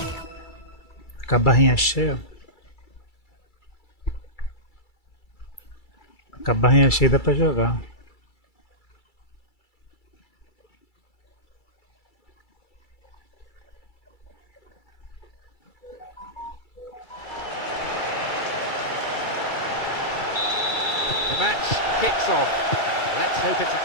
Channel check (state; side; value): late; right; 2.3 ms